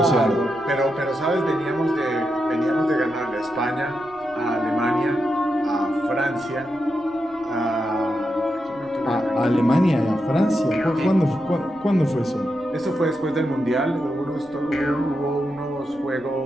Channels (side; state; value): left; noise; rumble, 27 dB below the sound